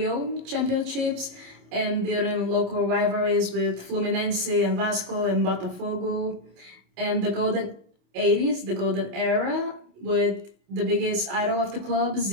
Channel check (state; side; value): late; left; 28 ms